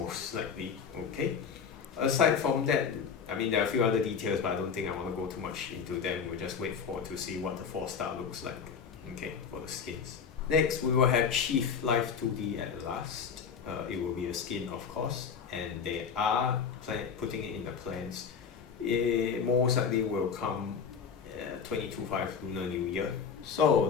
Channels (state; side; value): quieter; right; 6.5 dB